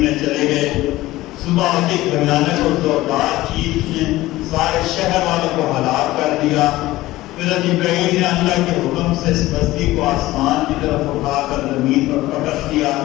چلے گئے. صبح کی بھیانک اور زوردار چیخ نے سارے شہر والوں کو ہلاک کر دیا. پھر جبرائیل نے اللہ کے حکم سے اس بستی کو آسمان کی طرف اٹھا کر زمین پر پٹک دیا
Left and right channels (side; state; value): right; quieter; 17.3 dB